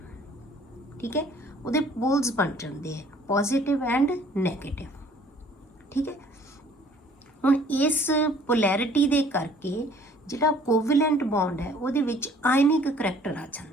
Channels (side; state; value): both; normal; correlation 0.56